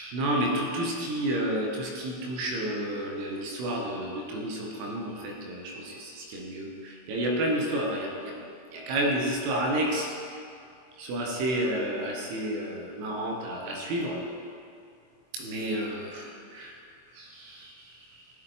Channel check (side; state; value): left; late; 24 ms